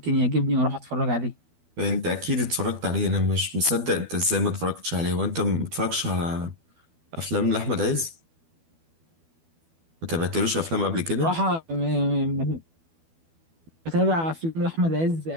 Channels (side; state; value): left; late; 12 ms